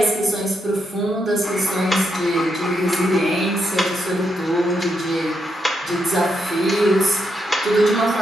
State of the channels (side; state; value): both; normal; correlation 0.81